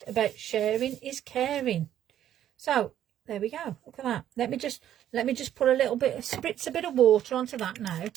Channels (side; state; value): left; quieter; 11.2 dB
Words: about sharing is caring. So there we go. Look at that. Let me just put a little bit, spritz a bit of water onto that now